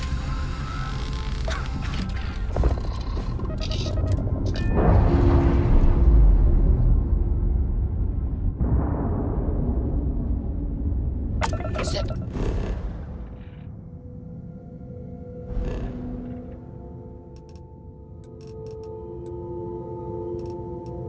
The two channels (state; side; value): identical; both; correlation 1.00